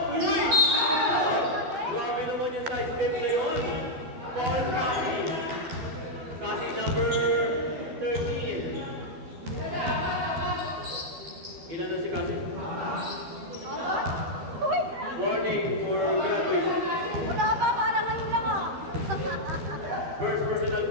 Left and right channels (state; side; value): late; left; 12 ms